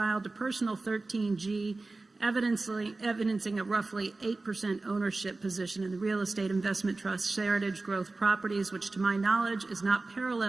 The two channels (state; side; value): quieter; left; 3.4 dB